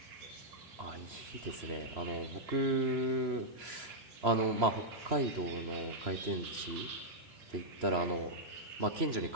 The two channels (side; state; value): left; late; 3.0 ms